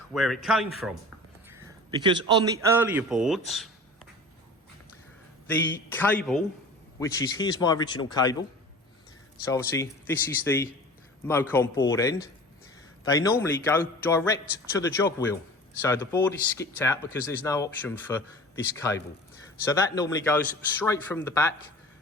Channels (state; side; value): normal; both; correlation 0.40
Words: where it came from. Because on the earlier boards, the cable, which is, here's my original cable. So obviously this is the Mocon board end. They normally go direct to the jog wheel. So the board is skipped out because there's no option for this cable. So that normally goes straight from the back,